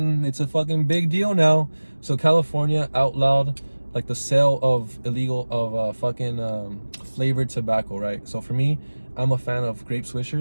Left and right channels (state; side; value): inverted; both; correlation -1.00